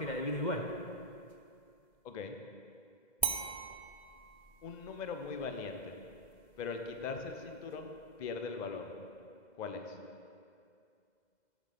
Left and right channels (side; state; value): right; late; 2.0 ms